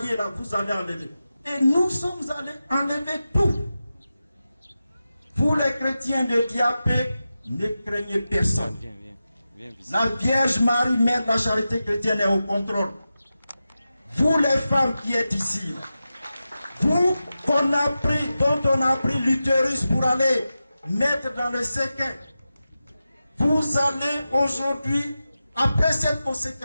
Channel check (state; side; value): inverted; both; correlation -0.92